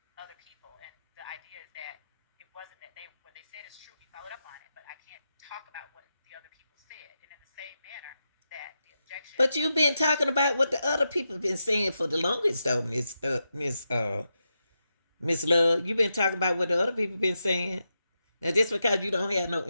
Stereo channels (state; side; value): inverted; both; correlation -0.87